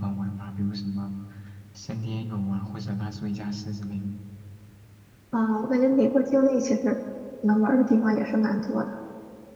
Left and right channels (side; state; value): both; identical; correlation 1.00